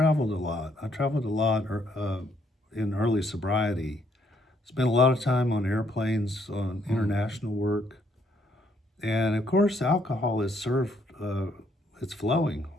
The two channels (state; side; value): normal; both; correlation 0.70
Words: a lot. I traveled a lot in early sobriety. Spent a lot of time on airplanes, on international work. And of course, alcohol is served, it's flowing